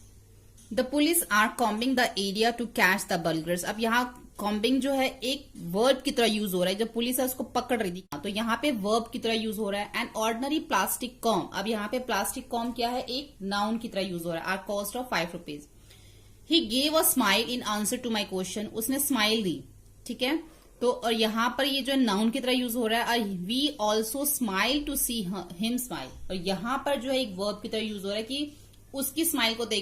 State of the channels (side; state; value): both; identical; correlation 1.00